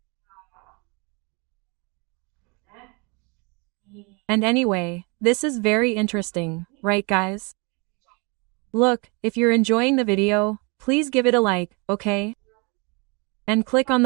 And anyway, this is very interesting, right guys? Look, if you're enjoying the video, please give it a like, okay? And click on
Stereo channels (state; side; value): quieter; left; 30.9 dB